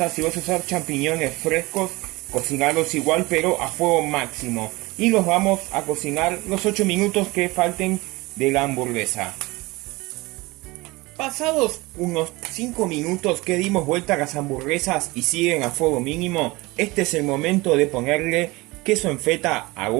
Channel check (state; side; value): quieter; left; 22.3 dB